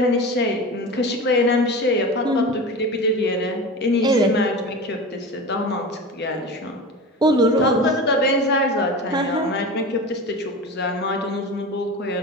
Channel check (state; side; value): normal; both; correlation 0.30